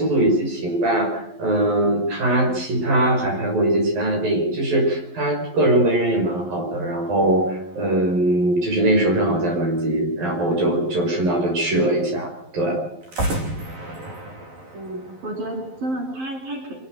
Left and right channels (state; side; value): late; left; 11 ms